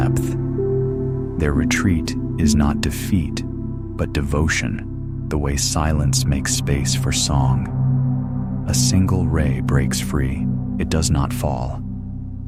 Their retreat is not defeat, but devotion, the way silence makes space for song. A single ray breaks free. It does not fall.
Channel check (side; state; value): both; identical; correlation 1.00